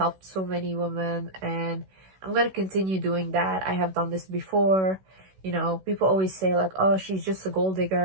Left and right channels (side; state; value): left; late; 16 ms